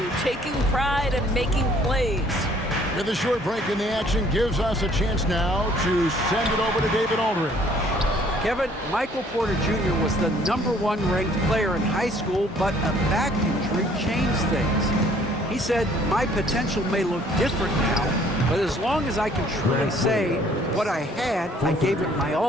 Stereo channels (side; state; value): both; normal; correlation 0.59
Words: taking pride and making plays. With a short break in the action, gives us a chance now to send it over to David Aldridge. Kevin, Michael Porter Jr. was the #1 ranked player in high school, but a back injury changed things. He said, "My potential may look different now, but as long as I can truly say what I had, I gave it my